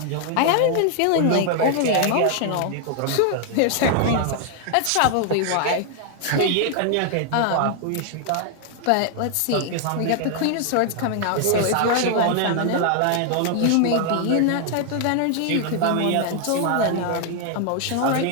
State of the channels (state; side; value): different; both; correlation 0.00